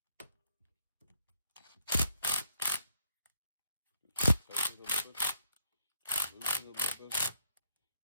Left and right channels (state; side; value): inverted; both; correlation -0.74